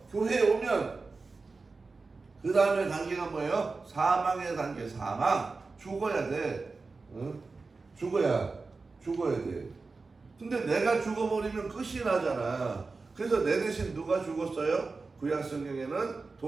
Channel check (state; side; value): quieter; left; 4.0 dB